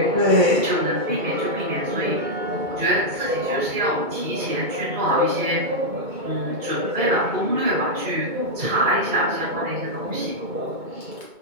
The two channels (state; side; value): late; left; 2.2 ms